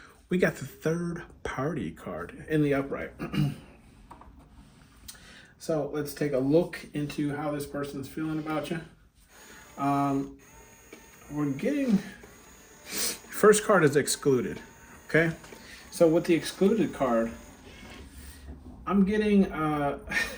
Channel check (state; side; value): identical; both; correlation 1.00